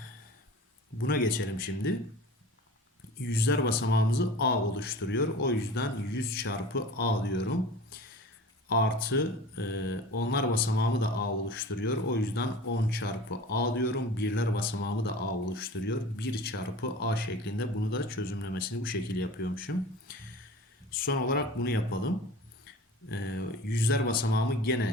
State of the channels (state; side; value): normal; both; correlation 0.38